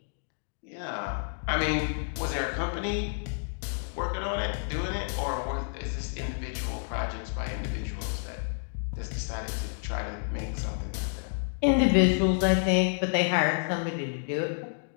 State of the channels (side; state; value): right; silent; 58 dB below the other